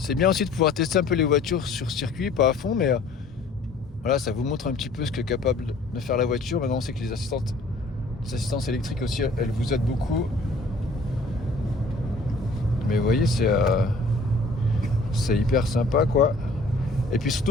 bien aussi de pouvoir tester un peu les voitures sur circuit, pas à fond, mais voilà, ça vous montre un petit peu ce qu'est capable de faire la voiture. Maintenant on sait que les assistances électriques aussi, elles vous aident beaucoup. Mais vous voyez, c'est hyper sympa quoi. Et puis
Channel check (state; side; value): quieter; right; 3.0 dB